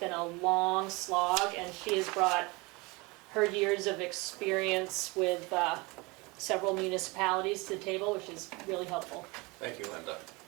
a long slog, and she has brought her years of experience with several municipalities to the table, which is really helpful. Thank you, Linda.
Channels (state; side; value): quieter; left; 25.8 dB